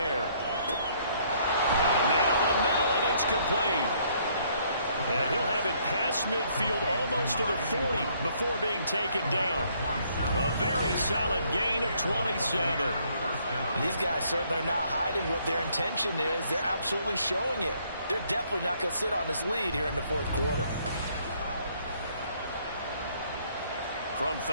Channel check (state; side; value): inverted; both; correlation -0.66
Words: Got a man over the middle, and it's complete. And he'll have it past midfield almost to the 40 before being taken down. A very solid gain of 27. These guys certainly are not hiding what their intention is. They're absolutely showing it. They're definitely not going to sit on this lead here in the 4th quarter. From